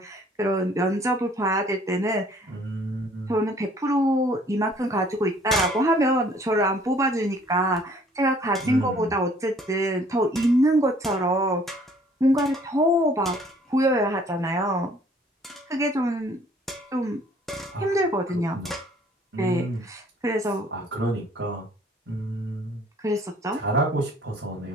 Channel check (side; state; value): both; normal; correlation 0.58